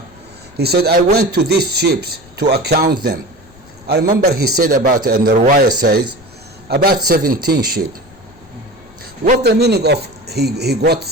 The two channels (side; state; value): left; noise; rumble, 26 dB below the sound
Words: he said, I went to these sheep to account them. I remember he said about, and the riwayah says, about 17 sheep. What the meaning of he got